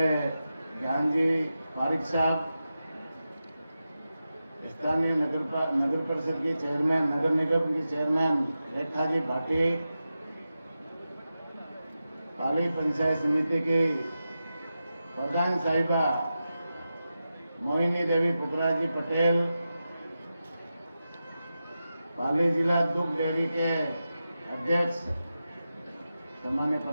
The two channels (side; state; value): both; inverted; correlation -0.91